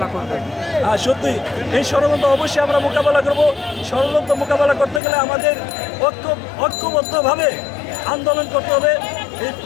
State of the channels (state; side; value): drops out; right; at 5.0 s